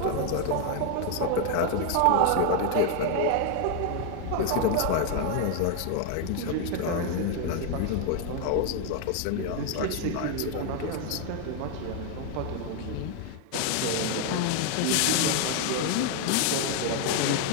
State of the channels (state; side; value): different; both; correlation 0.01